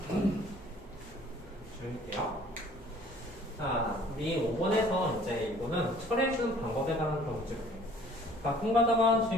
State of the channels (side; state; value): both; normal; correlation 0.53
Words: 조용히게요. 자, 우리 5번에서 이제 이거는 처리해주는 방법에 관한 그런 문제가 돼요. 가끔 가다가